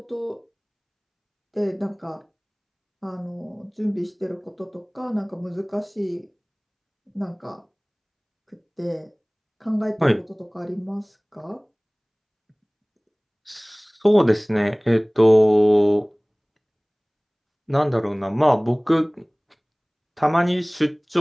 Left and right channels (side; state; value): both; identical; correlation 1.00